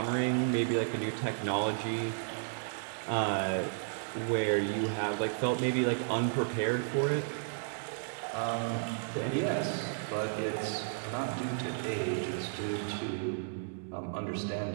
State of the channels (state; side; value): silent; left; digital silence